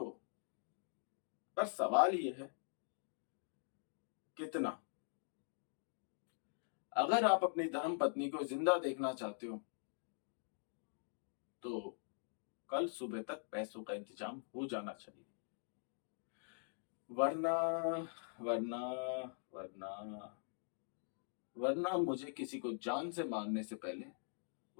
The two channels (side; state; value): right; silent; digital silence